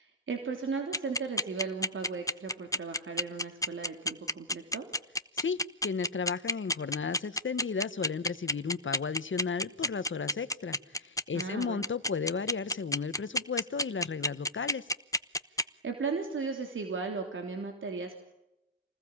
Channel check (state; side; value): normal; both; correlation -0.06